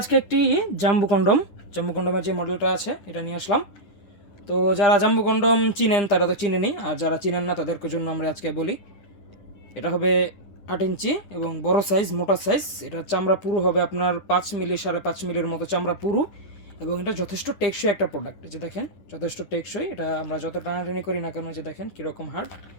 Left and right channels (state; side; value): late; right; 9.9 ms